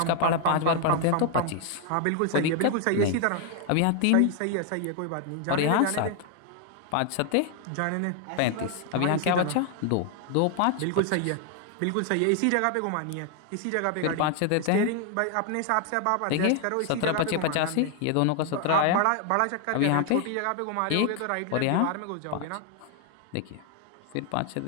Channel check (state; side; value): different; both; correlation 0.00